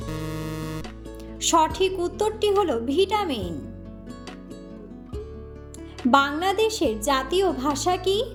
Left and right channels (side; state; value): both; identical; correlation 1.00